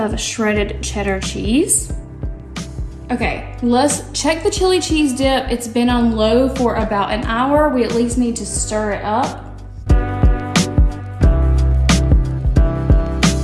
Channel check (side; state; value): both; identical; correlation 1.00